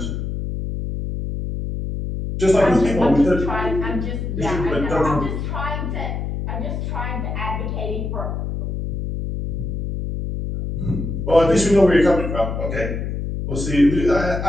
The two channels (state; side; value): noise; left; hum, 4 dB below the sound